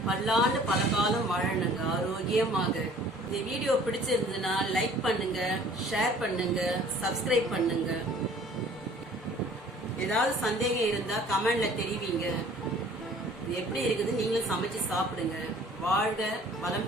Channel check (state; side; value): normal; both; correlation 0.52